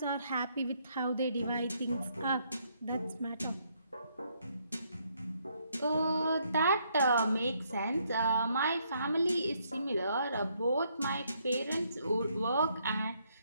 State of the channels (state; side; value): inverted; both; correlation -0.72